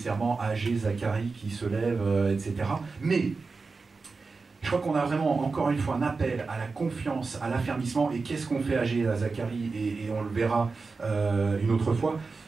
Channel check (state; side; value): quieter; left; 4.3 dB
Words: Agé, Zacharie qui se lève, etc. Mais je crois qu'on a vraiment, encore une fois, un appel à la confiance, à l'affermissement. Et qu'est-ce qu'on fait Agé, à Zacharie, et on le verra une autre fois,